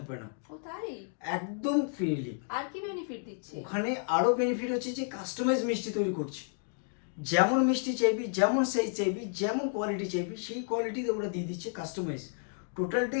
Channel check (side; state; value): right; silent; 57 dB below the other